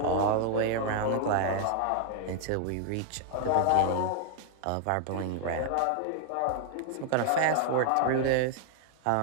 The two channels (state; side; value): different; both; correlation 0.00